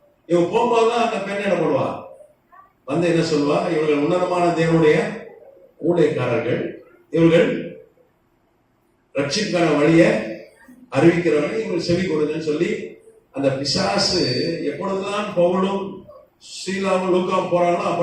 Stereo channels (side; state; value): both; identical; correlation 1.00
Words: இவன் போகும்போதுதான் அந்த பெண் என்ன பண்ணுவா, வந்து என்ன சொல்லுவா, இவர்கள் உன்னதமான தேவனுடைய ஊழியக்காரர்கள், இவர்கள் ரட்சிக்கான வழியை அறிவிக்கிறவர்கள், இவங்க செவி கொடுங்கன்னு சொல்லி அந்த பிசாசு எப்பொழுதுதான் பவுலும் ஸ்ரீலாவும் லூக்காவும் போறாங்களோ